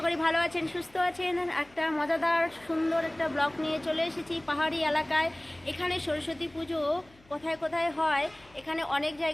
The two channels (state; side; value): noise; left; hum, 28 dB below the sound